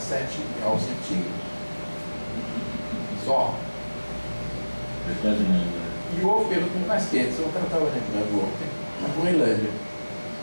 graus centígrados. Só. É quase nada. E houve período muito mais quente, eu estava lembrando ontem, na Groenlândia.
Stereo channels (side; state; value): both; inverted; correlation -1.00